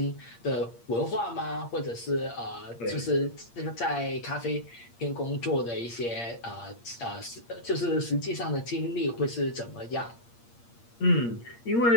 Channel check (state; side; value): late; right; 8.6 ms